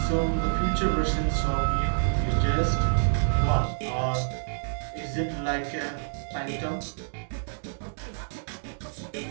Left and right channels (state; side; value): silent; left; digital silence